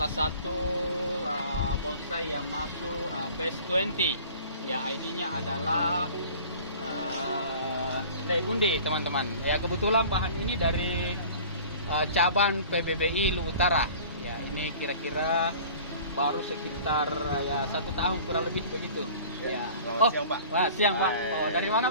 satu bonsai yang masuk Best 20. Ya, ID-nya adalah Legundi, teman-teman. Ya, kebetulan bahan ini dari cabang PBBI Lu Utara. Ya, ini kira-kira baru sekitar ya 1 tahun kurang lebih begitu. Ya. Selamat siang, Pak. Wah, siang, Pak. Oh, dari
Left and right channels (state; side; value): inverted; both; correlation -0.45